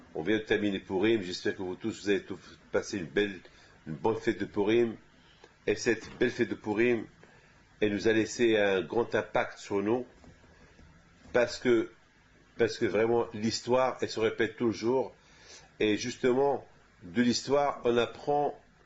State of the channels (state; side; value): identical; both; correlation 1.00